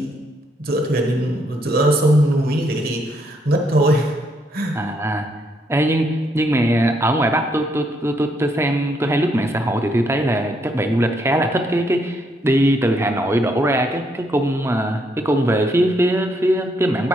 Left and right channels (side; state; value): both; normal; correlation 0.74